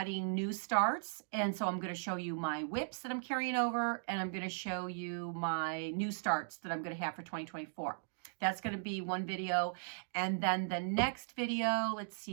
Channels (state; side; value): silent; left; digital silence